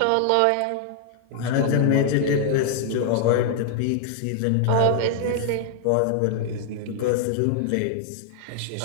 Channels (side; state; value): both; different; correlation 0.00